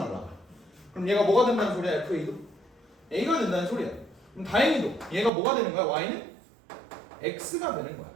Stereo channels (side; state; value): left; drops out; at 5.3 s